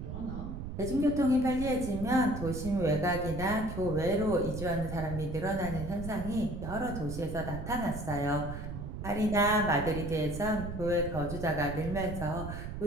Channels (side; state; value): right; noise; rumble, 7 dB below the sound